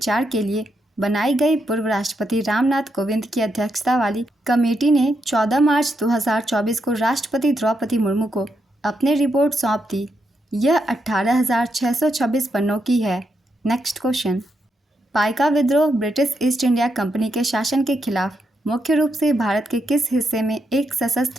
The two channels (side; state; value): both; normal; correlation 0.81